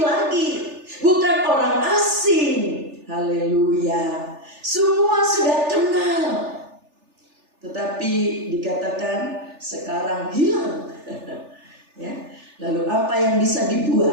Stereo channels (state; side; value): late; left; 3.4 ms